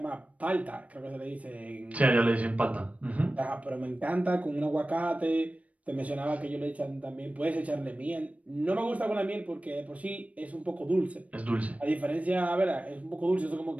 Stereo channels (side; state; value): left; late; 0.067 ms